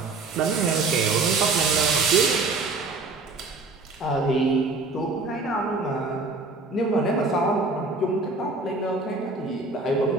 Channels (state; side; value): quieter; left; 3.6 dB